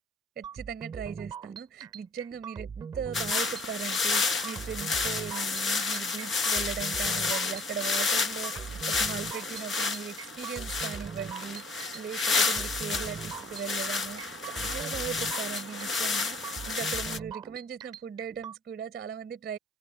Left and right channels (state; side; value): normal; both; correlation 0.54